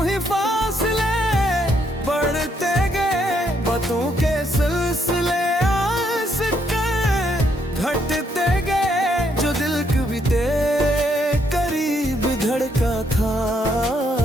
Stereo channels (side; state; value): both; normal; correlation 0.74